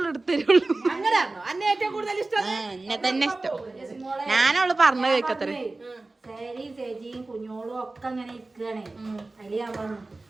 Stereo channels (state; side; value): quieter; left; 3.2 dB